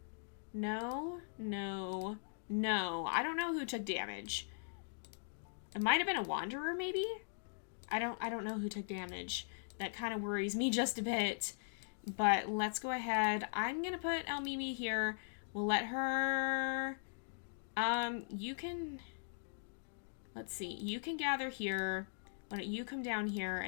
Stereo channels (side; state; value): right; silent; digital silence